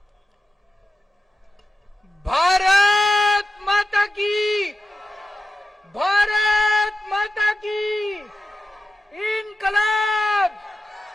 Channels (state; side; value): normal; both; correlation 0.92